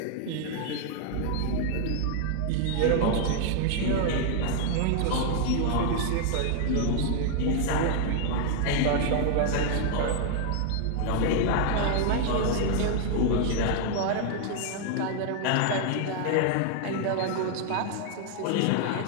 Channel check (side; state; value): both; different; correlation 0.00